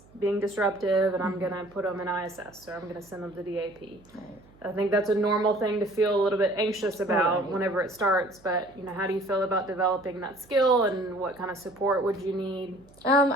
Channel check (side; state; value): right; noise; hum, 27 dB below the sound